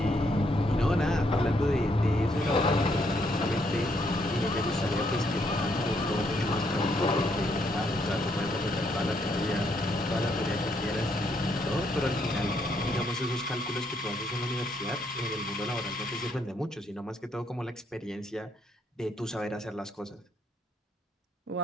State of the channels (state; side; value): normal; both; correlation 0.73